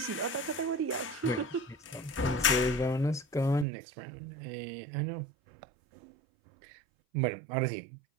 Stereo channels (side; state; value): left; drops out; at 3.7 s